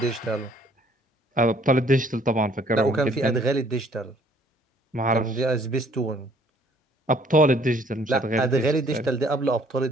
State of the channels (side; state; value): both; normal; correlation 0.60